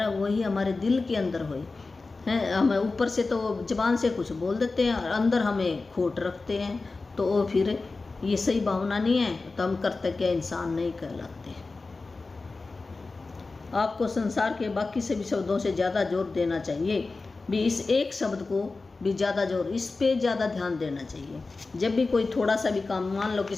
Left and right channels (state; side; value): quieter; right; 3.7 dB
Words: वही हमारे दिल के अंदर हो है। हम ऊपर से तो जबान से कुछ बोल देते हैं और अंदर हमें खोट रखते हैं, तो वो फिर ये सही भावना नहीं है, तो हम कृतज्ञ इंसान नहीं कहलाते। आपको संसार के बाकी सभी शब्दों से ज़्यादा जोर देना चाहिए। भी इस एक शब्द को भी ज़्यादा जोर, इस पे ज़्यादा ध्यान देना चाहिए। जब भी कोई थोड़ा सा भी काम, मान लो